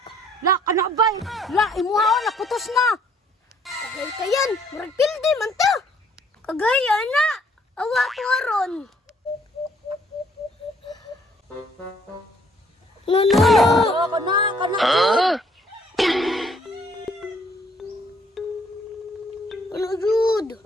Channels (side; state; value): both; normal; correlation 0.63